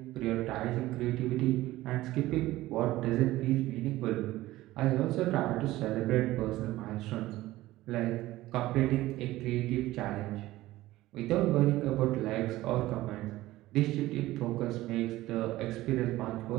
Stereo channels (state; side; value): quieter; left; 16.8 dB